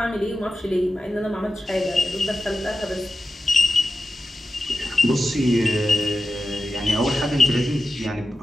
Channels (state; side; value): normal; both; correlation 0.92